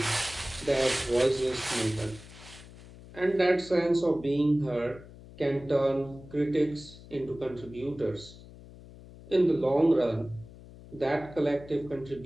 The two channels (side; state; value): left; noise; hum, 18 dB below the sound